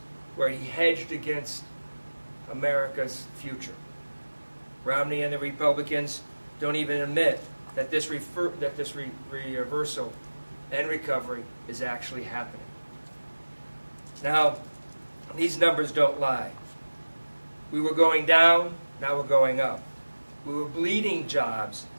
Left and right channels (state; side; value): inverted; both; correlation -1.00